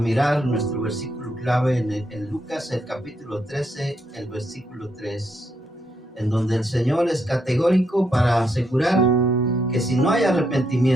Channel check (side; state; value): both; normal; correlation 0.78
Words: nuestro versículo clave en Lucas, el capítulo 13, el versículo 3, en donde el Señor es categórico para asegurar que si no hay